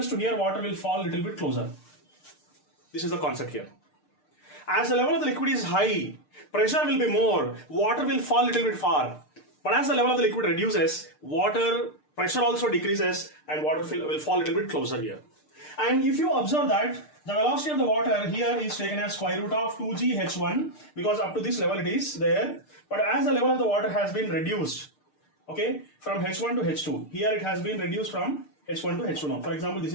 to here, water will fall a little bit closer. This is the concept here. As the level of the liquid is high, pressure will be more, water will fall a little bit far. But as the level of the liquid reduces, water pressure also decreases and water will fall a little bit closer here. And if you observe that the velocity of the water here is taken as square root of 2g h1 because up to this level it is there. But as the level of the water has been reduced, okay, from h1 to h2, here it has been reduced from h1 to h2 now. For example, this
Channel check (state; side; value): late; right; 6.6 ms